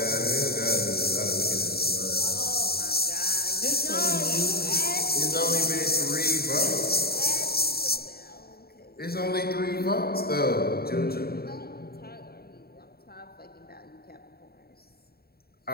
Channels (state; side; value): late; right; 0.45 ms